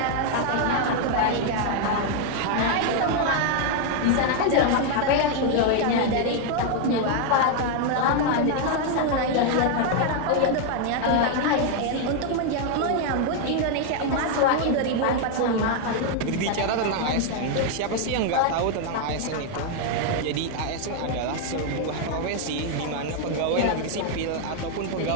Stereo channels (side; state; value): both; different; correlation 0.00